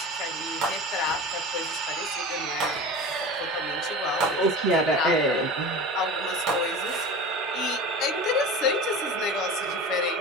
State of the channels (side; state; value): both; normal; correlation 0.32